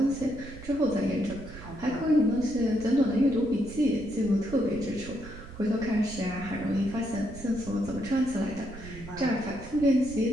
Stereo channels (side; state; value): right; noise; rumble, 14 dB below the sound